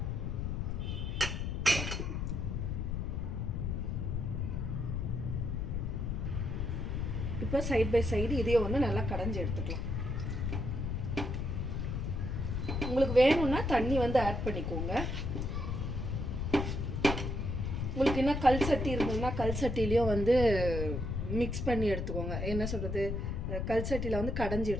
இப்போ சைட் பை சைடு இதையே வந்து நல்லா கடைஞ்சி எடுத்துக்கலாம். உங்களுக்கு வேணும்னா தண்ணி வந்து ஆட் பண்ணிக்கோங்க. உங்களுக்கு என்ன கல் சட்டி இருந்ததுன்னா கல் சட்டிலையும் வந்து மிக்ஸ் பண்ணி எடுத்துக்கோங்க. என்ன சொல்கிறது, கல் சட்டியில் வந்து கடைஞ்சி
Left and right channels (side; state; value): left; noise; rumble, 2 dB below the sound